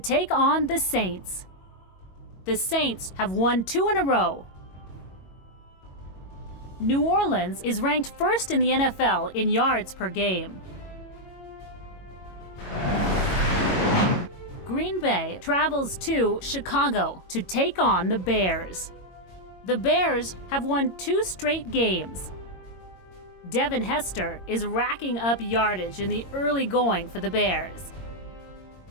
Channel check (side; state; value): right; late; 22 ms